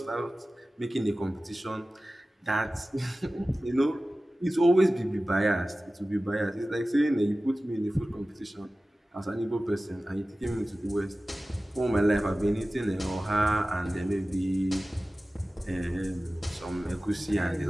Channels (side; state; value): both; normal; correlation 0.96